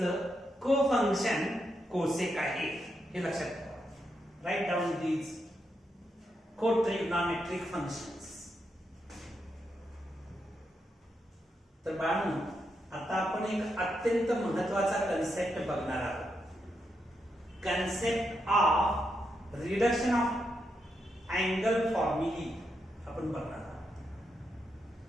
को फंक्शन कोसेक आहे. हे लक्षात ठेवा. Write down these cotrigonometric functions. तर बाळांनो, आता आपण एक अत्यंत महत्वाचा कन्सेप्ट बघणार आहोत. Concept of reduction of angle formulae आपण बघणार आहोत.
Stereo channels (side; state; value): both; normal; correlation 0.82